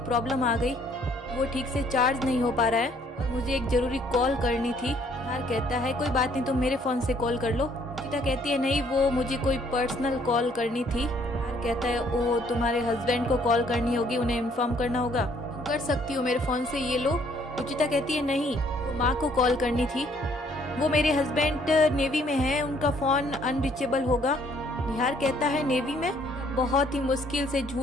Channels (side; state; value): both; normal; correlation 0.64